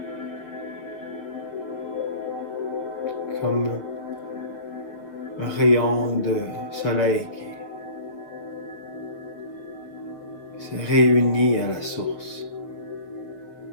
Comme un rayon de soleil qui se réunit à la source.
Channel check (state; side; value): late; right; 6.9 ms